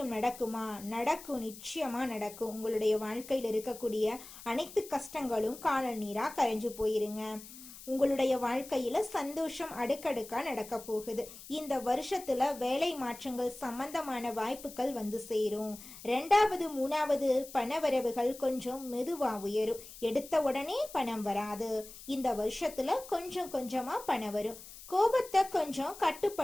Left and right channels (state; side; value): noise; left; hiss, 16 dB below the sound